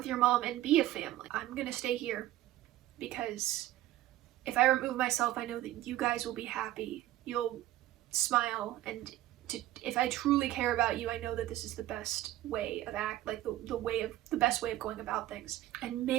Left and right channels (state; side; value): quieter; left; 14.7 dB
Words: your mom, and be a family. I'm gonna stay here because if I remove myself, I know that you guys will be happy. You'll smile and if I truly care about you, I know that this is the best way of the best way of going about things. And